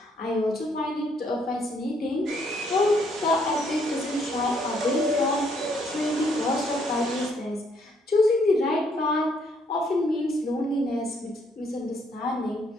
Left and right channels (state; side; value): normal; both; correlation 0.69